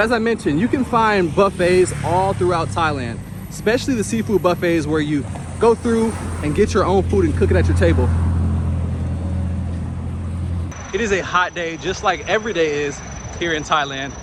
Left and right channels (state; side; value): identical; both; correlation 1.00